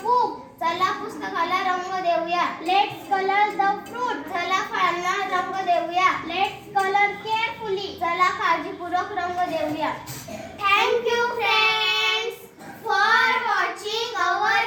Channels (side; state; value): both; identical; correlation 1.00